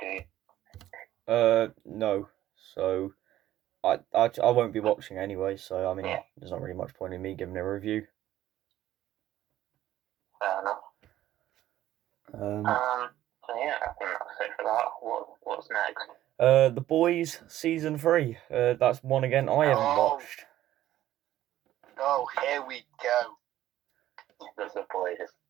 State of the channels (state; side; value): quieter; left; 13.4 dB